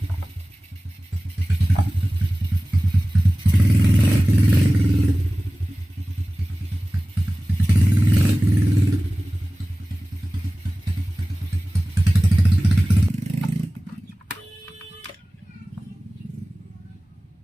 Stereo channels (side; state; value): both; normal; correlation 0.97